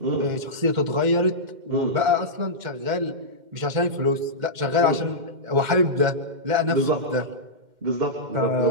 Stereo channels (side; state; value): left; late; 2.1 ms